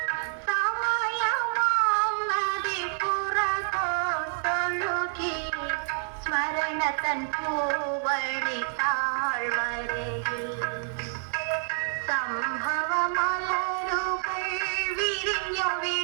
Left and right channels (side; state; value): left; silent; digital silence